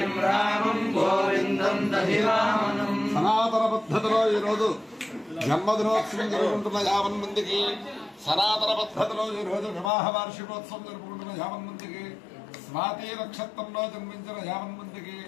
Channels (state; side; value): drops out; right; at 9.9 s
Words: रामं गोविंदं दधिवामनं సనాతన పద్ధతిలో ఈ రోజు జన్మదినోత్సవం జరుపుకుంటున్న 50 మందికి సనాతన పద్ధతిలో ఈ రోజు వివాహ వార్షికోత్సవం జరుపుకుంటున్న 50 మందికి స్వాతి నక్షత్రంలో జన్మించిన 50 మందికి